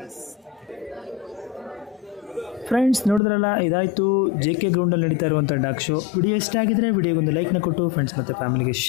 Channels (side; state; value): right; drops out; at 3.2 s